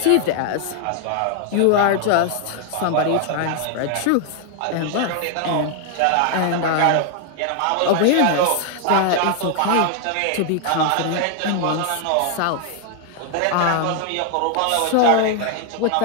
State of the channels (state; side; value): different; both; correlation 0.00